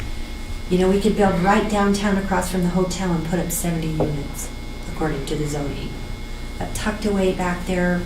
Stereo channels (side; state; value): both; identical; correlation 1.00